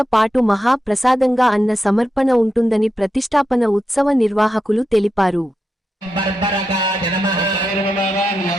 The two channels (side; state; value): both; normal; correlation 0.87